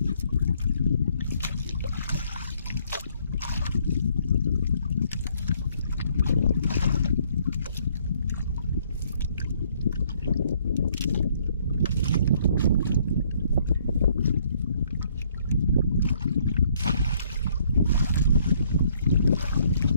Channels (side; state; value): both; inverted; correlation -0.65